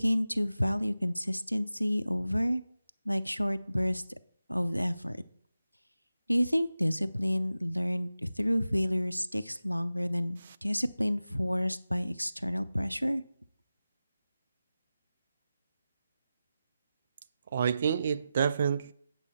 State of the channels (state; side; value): inverted; both; correlation -0.94